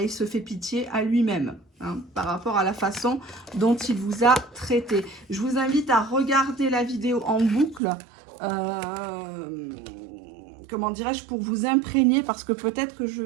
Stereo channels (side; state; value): left; drops out; at 7.8 s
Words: se fait pitié à lui-même hein, par rapport à la façon dont il vous a traité. Je vous invite à regarder la vidéo en boucle, comment dirais-je, pour vous imprégner, parce que peut-être que je